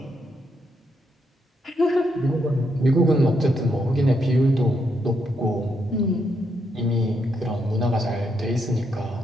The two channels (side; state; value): both; normal; correlation 0.79